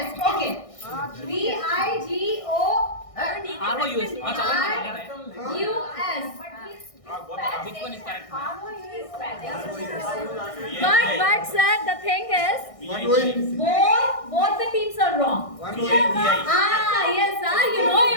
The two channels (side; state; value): right; late; 1.6 ms